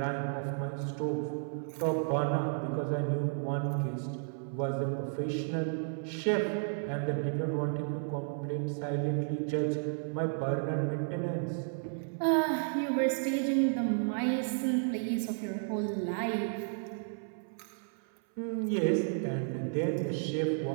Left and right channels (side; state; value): left; silent; 56 dB below the other